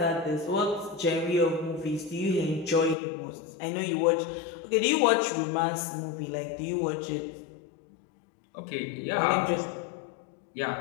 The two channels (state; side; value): drops out; right; at 3.0 s